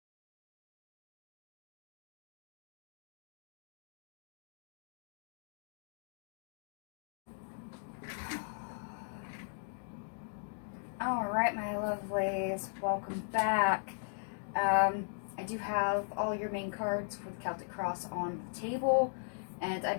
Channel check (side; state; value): right; silent; digital silence